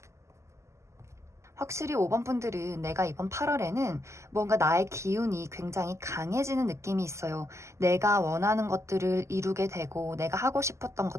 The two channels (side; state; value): left; late; 0.13 ms